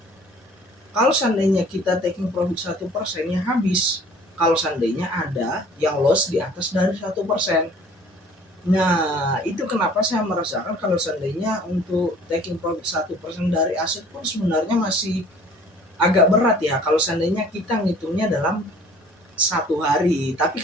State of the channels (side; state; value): both; normal; correlation 0.52